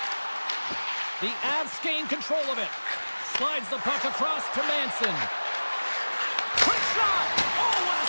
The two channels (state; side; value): inverted; both; correlation -1.00